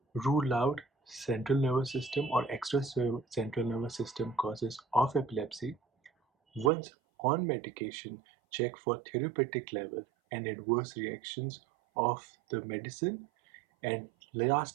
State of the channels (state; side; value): drops out; left; at 6.7 s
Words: Rule out central nervous system or extra central nervous system causes of epilepsy. Once on medication, check for therapeutic level and adverse reactions of the medicine. And